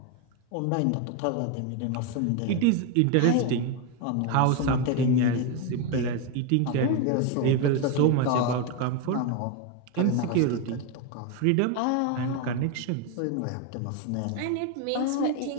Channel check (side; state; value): both; different; correlation 0.02